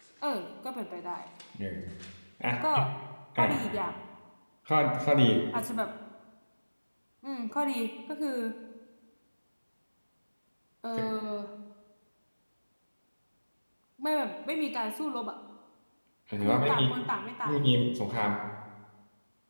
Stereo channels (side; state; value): both; inverted; correlation -1.00